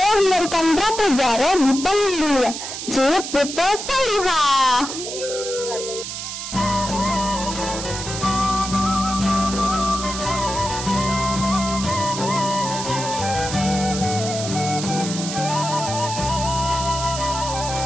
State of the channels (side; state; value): right; noise; hiss, 7 dB below the sound